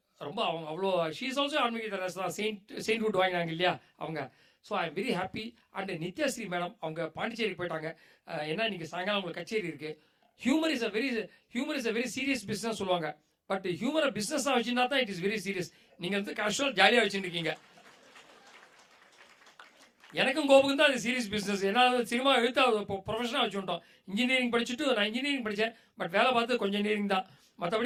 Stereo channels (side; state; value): both; identical; correlation 1.00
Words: ரொம்ப அவங்க அவ்வளோ ஷீஸ் ஆல்சோ ஆன்மீக தெரேசா தான். செயின்ட்ஹுட் வாங்கினாங்க இல்லையா அவங்க. So I am very happy. And Nithyasree madam அவங்க பாண்டிச்சேரிக்கு போயிட்டாங்க. ஏன்னா இன்றைக்கி சாயங்காலம் உங்களுக்கு கச்சேரி இருக்குது. Humour is a very serious business சொல்லுவாங்க. பட் ஹியூமரை பிஸ்னஸாக வச்சுருந்தா தான் இட் இஸ் வெரி சீரியஸ். நீங்கள் வந்து கேஷுவல் ஜாலியாக வச்சுருக்கீங்க. எனக்கும் கோபுக்கும் தான் அது சீரியஸ் பிஸ்னஸ். ஏன்னா சினிமா எழுத்து ப்ரொஃபஷனாக வச்சுட்டோம். இன்ஜினியரிங் படிச்சுட்டு நான் இன்ஜினியரிங் படித்தேன். பட் வேலை பார்த்து கொஞ்சம் இன்ஜினியரிங் தான்.